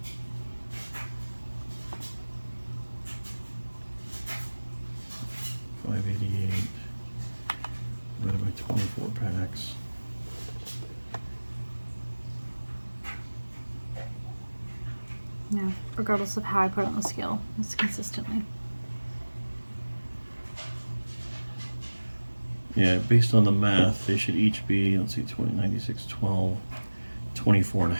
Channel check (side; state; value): both; inverted; correlation -1.00